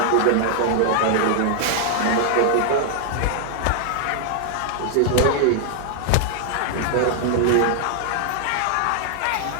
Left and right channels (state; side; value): different; both; correlation 0.00